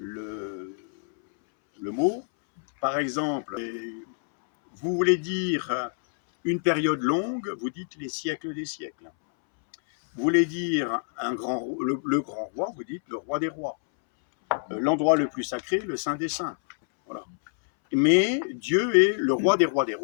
mot. Par exemple, vous voulez dire une période longue, vous dites les siècles des siècles. Vous voulez dire le grand roi, vous dites le roi des rois. L'endroit le plus sacré, le saint des saints. Voilà. Mais Dieu est le roi des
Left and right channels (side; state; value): right; silent; 61 dB below the other